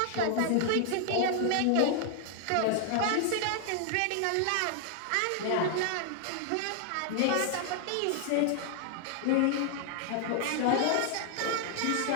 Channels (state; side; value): different; both; correlation 0.00